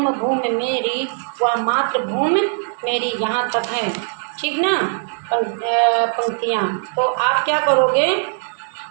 भूमि मेरी, वह मातृभूमि मेरी। यहाँ तक है, ठीक ना पंक्तियाँ। तो आप क्या करोगे,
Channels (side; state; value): left; silent; 66 dB below the other